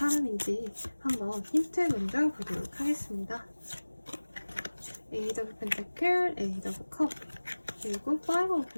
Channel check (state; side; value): inverted; both; correlation -1.00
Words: 한번 힌트 먼저 보도록 하겠습니다. 에이드 오브 펜타클, 에이드 오브 컵, 그리고 파이브 오브